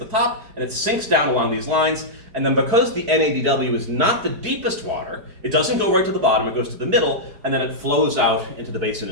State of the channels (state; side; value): late; left; 4.8 ms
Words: top, and it sinks down along these lines. And then because the NADW is not the deepest water, it doesn't go right to the bottom, it goes to the middle, and then it flows out into the basin